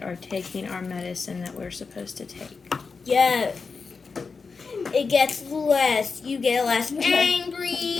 are taking our medicine that we're supposed to take. Yes. It gets less. You get less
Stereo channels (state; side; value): quieter; right; 4.8 dB